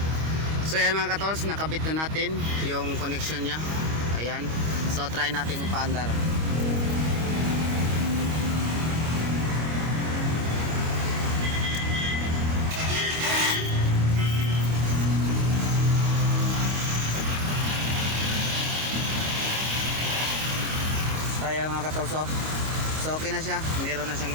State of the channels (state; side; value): late; left; 25 ms